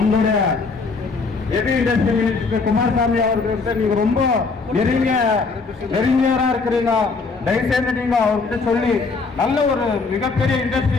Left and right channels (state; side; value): quieter; right; 4.3 dB